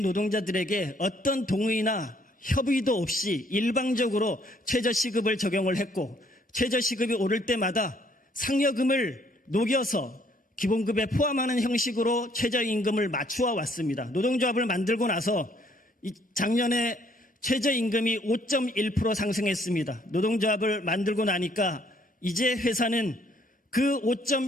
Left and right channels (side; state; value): both; normal; correlation 0.65